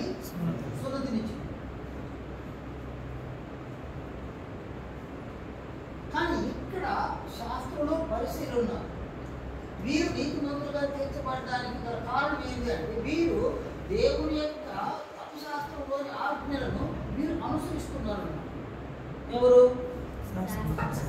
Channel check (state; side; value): identical; both; correlation 1.00